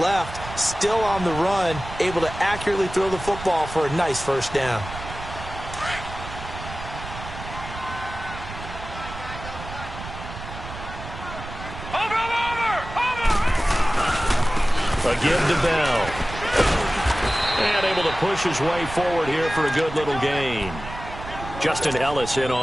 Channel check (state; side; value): noise; right; rumble, 11 dB below the sound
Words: still on the run, able to accurately throw the football for a nice first down. A give to Bell. And able to push his way forward here for a good little gain. Justin Ellis in